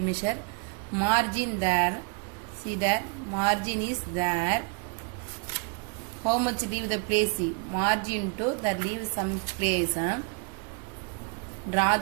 Margin there. See there, margin is there. How much leave the place? Margin to the leave some place. Draw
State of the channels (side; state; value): left; quieter; 33.7 dB